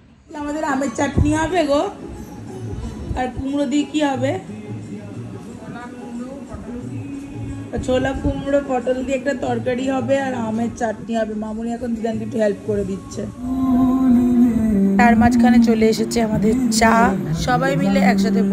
নিই। আমাদের আমের চাটনি হবে গো, আর কুমড়ো দিয়ে কি হবে? ছোলা কুমড়ো পটল দিয়ে একটা তরকারি হবে, আর আমের চাটনি হবে। মামুনি এখন দিদানকে একটু হেল্প করে দিচ্ছে। তার মাঝখানে চলে এসেছে আমাদের চা, সবাই মিলে একসাথে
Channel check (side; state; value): both; identical; correlation 1.00